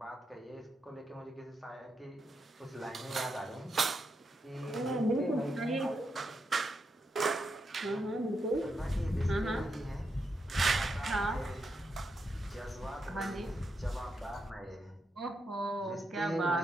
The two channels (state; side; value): normal; both; correlation 0.83